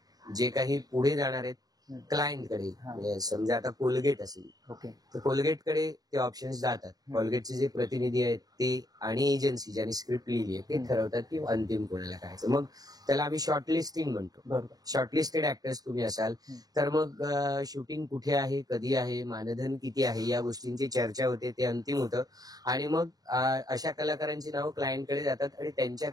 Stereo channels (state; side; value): late; left; 0.18 ms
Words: जे काही पुढे जाणार आहेत क्लायंटकडे, म्हणजे समजा आता कोलगेट असेल तर कोलगेटकडे ते ऑप्शन्स जातात. कोलगेटचे जे प्रतिनिधी आहेत ते आणि एजन्सी ज्यांनी स्क्रिप्ट लिहिली आहे ते ठरवतात की अंतिम कोणाला करायचं. मग त्याला आम्ही शॉर्टलिस्टिंग म्हणतो. शॉर्टलिस्टेड ऍक्टर्स तुम्ही असाल तर मग शूटिंग कुठे आहे, कधी आहे, मानधन किती आहे, या गोष्टींची चर्चा होते, ते अंतिम होतं. आणि मग अशा कलाकारांची नावं क्लायंटकडे जातात आणि